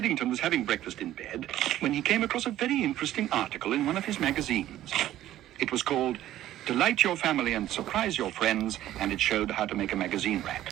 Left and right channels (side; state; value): left; quieter; 13.4 dB